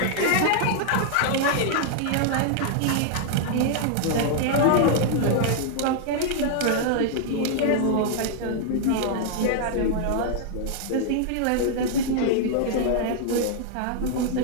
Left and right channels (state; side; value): different; both; correlation -0.01